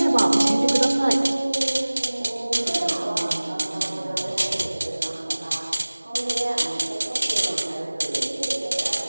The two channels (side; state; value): both; inverted; correlation -1.00